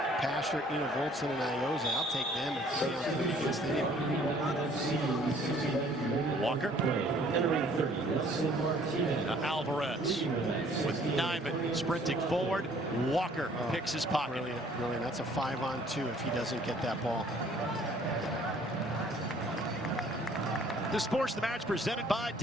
Pasher, Voltson, and Ioze, I'll take them and stay on 30 against anyone. Walker. Alvarez with Nyman sprinting forward. Walker picks his pocket. Brilliant, brilliant. That's a 5-on-2 if he doesn't get that ball. The sports of the match presented by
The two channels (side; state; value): both; normal; correlation 0.57